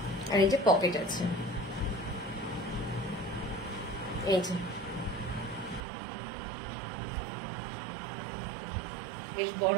আর এই যে পকেট আছে, এই যে বেশ বড়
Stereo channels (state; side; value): drops out; left; at 5.8 s